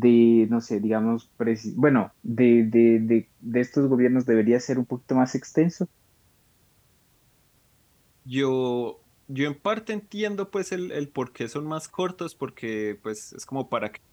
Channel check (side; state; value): both; identical; correlation 1.00